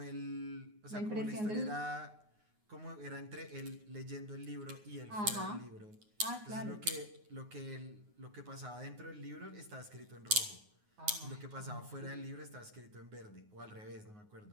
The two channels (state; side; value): late; left; 9.5 ms